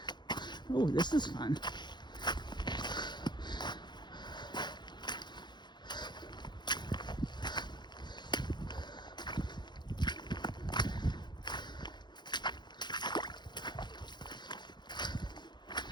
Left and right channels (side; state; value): right; late; 0.21 ms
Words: Oh, this is fun.